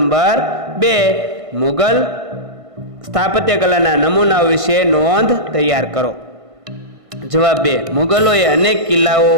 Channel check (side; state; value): left; late; 1.5 ms